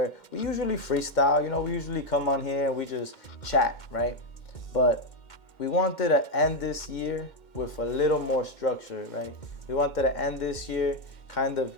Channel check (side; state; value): right; late; 2.1 ms